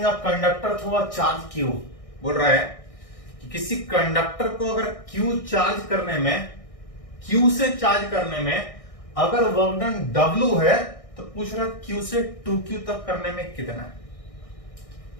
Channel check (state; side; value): late; right; 1.6 ms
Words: a conductor through a charge Q। बोल रहा है कि किसी कंडक्टर को अगर Q चार्ज करने में, Q से चार्ज करने में अगर वर्क डन W है तो पूछ रहा है Q से 2Q तक करने में कितना है।